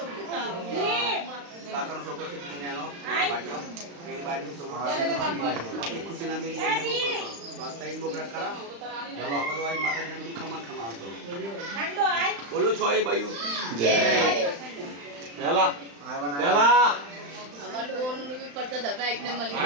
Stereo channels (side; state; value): left; late; 35 ms